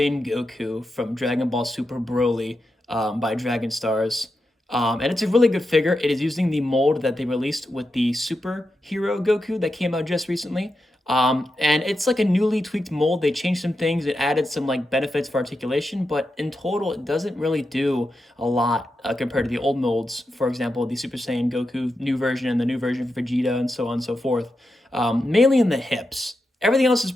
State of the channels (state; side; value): normal; both; correlation 0.88